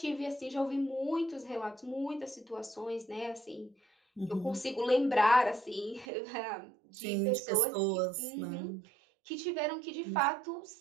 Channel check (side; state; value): left; drops out; at 6.1 s